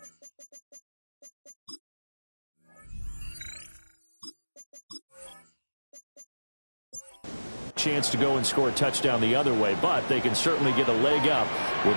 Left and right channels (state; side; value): inverted; both; correlation -1.00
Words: Chance to go and score a touchdown the other way, but they can certainly get a leg up with